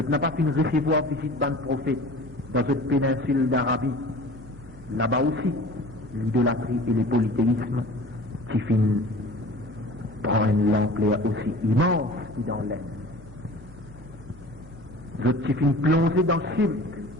n'ai pas fini de recevoir visite d'un prophète dans cette péninsule d'Arabie. Là-bas aussi, l'idolâtrie et le polythéisme qui finissent prendre une ampleur aussi immense que dans l'air. Je suis fini plongé dans le cirque,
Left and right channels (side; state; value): both; normal; correlation 0.41